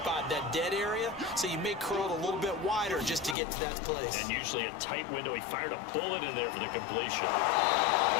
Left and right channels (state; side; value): drops out; right; at 3.4 s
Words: that dead area, so you may curl it a little bit wider just to get to that place. And usually a tight window. He fired a bullet in there for the completion.